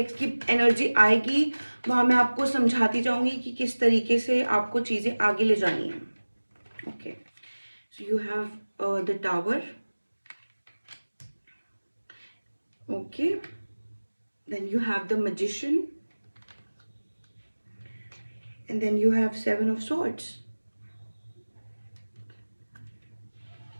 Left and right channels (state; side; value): inverted; both; correlation -1.00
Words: की एनर्जी आएगी वहाँ मैं आपको समझाती जाऊंगी कि किस तरीके से आपको चीज़ें आगे ले जानी है. Okay, so you have the tower. Okay, then you have the magician, and then you have 7 of swords.